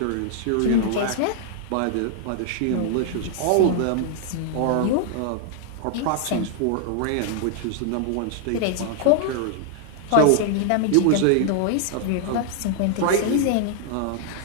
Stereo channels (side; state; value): both; different; correlation 0.00